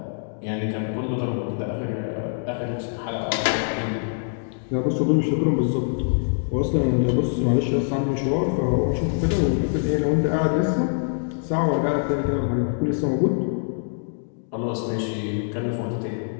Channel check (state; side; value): silent; right; digital silence